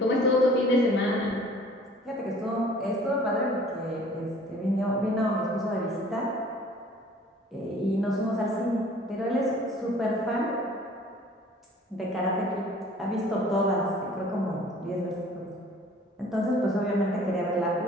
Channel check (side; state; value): both; normal; correlation 0.51